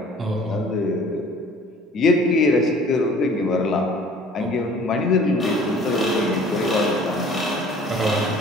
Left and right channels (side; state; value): both; normal; correlation 0.51